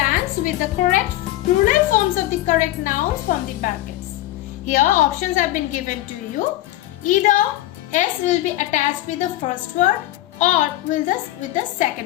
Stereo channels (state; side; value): quieter; right; 15.6 dB